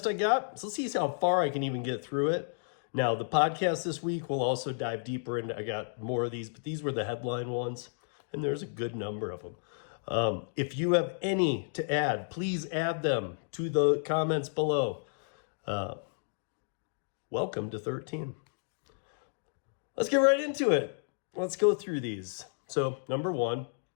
I got. So let's see how far I can even get through it. Now, the podcast this week will also dive deeper into, I got more of these, but these were the headline ones, and there's a good number of them. If you have any to add, please add them to the comments below. Welcome to 13. Let's get right into it. Let's go through these. So, number one,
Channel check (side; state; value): right; silent; digital silence